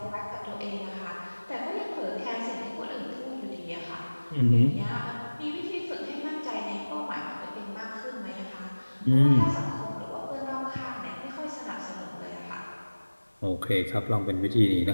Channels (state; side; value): inverted; both; correlation -1.00